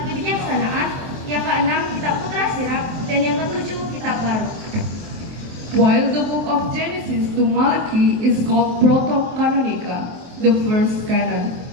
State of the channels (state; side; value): late; left; 23 ms